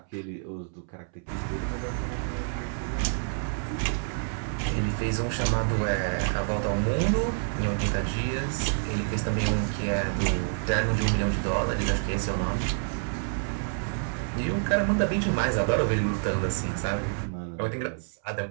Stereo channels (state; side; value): silent; left; 59 dB below the other